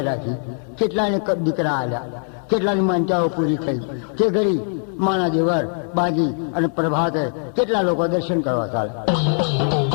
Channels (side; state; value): right; silent; 58 dB below the other